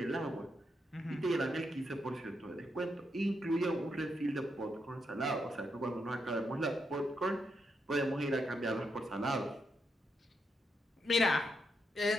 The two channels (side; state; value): both; normal; correlation 0.81